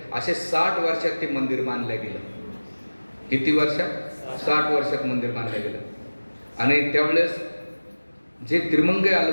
असे 60 वर्षात ते मंदिर बांधलं गेलं. किती वर्षात? 60 वर्षात मंदिर बांधलं गेलं. आणि त्यावेळेस जे त्रिमंगई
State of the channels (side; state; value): both; inverted; correlation -1.00